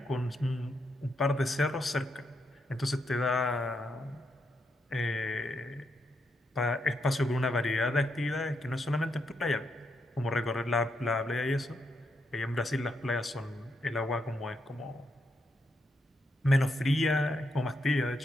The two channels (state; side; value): normal; both; correlation 0.80